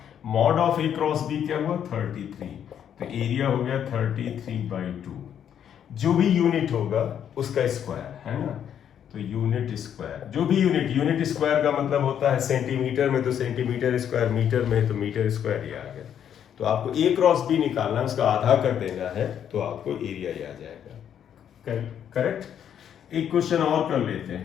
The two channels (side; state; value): right; quieter; 9.2 dB